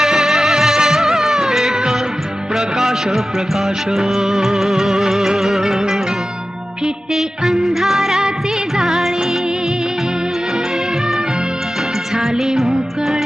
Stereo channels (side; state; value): both; normal; correlation 0.94